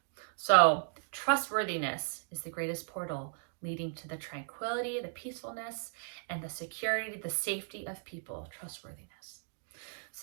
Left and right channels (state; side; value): silent; left; digital silence